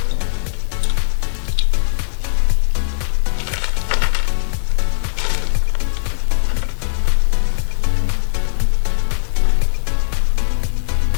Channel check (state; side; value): silent; right; 67 dB below the other